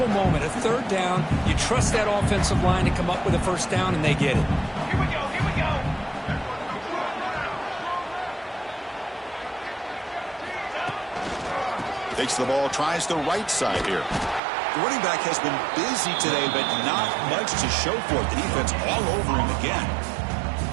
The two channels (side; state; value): left; drops out; at 14.4 s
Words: moment, a third down. You trust that offensive line to come up with a first down, and they get it. Here we go, here we go. Takes the ball, tries the right side here. The running back has been busy today, but not much to show for it. The defense all over him again.